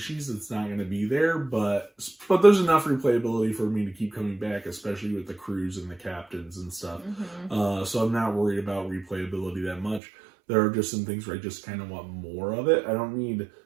that's not going to be there, but there's enough replayability for me to keep coming back, especially with the crews and the captains and stuff. So I'm not worried about replayability that much. There are just some things where I just kind of want more of it. I don't need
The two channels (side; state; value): left; drops out; at 10.0 s